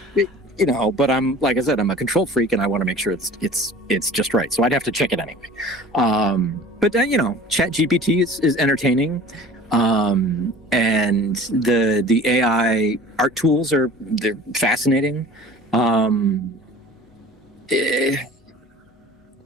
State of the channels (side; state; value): both; normal; correlation 0.44